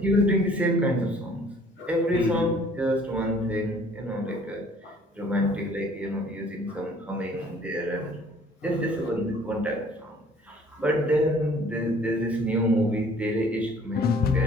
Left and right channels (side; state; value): both; normal; correlation 0.56